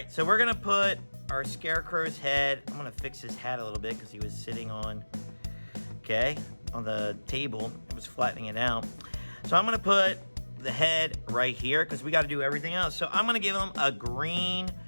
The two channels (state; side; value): inverted; both; correlation -1.00